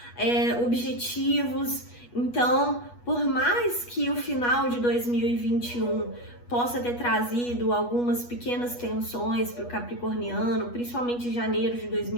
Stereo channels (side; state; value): right; late; 8.3 ms